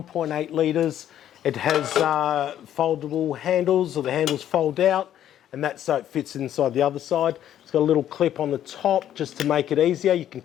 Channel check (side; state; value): right; quieter; 11.1 dB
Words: litres, it has foldable handles, or the handles fold out, and that's so it fits inside the other side. It's got a little clip on the top just to make it easier. You can